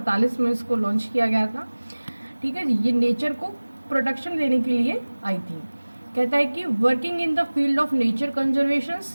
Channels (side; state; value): both; inverted; correlation -1.00